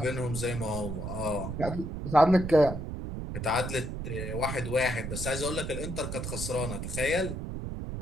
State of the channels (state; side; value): noise; right; rumble, 5 dB below the sound